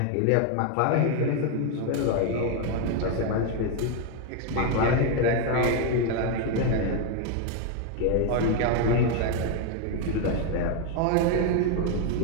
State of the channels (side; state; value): both; different; correlation 0.01